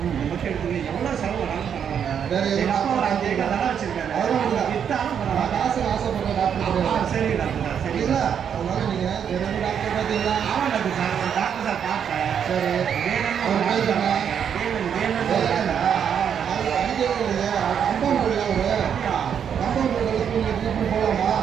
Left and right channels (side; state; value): left; quieter; 8.1 dB